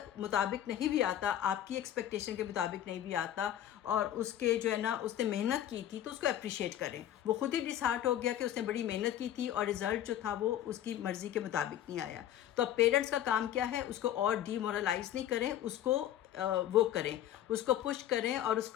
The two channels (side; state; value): right; quieter; 11.6 dB